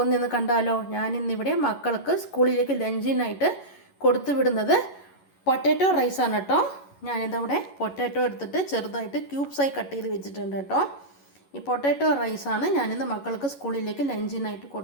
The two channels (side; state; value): right; late; 11 ms